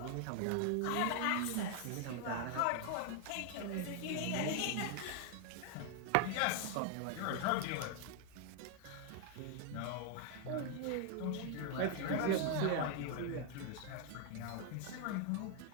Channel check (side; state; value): both; different; correlation 0.00